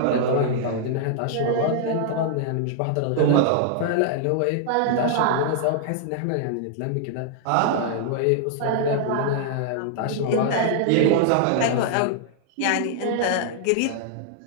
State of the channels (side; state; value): both; different; correlation -0.01